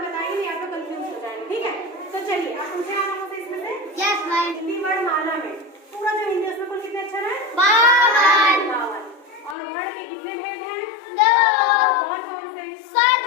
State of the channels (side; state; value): right; drops out; at 9.6 s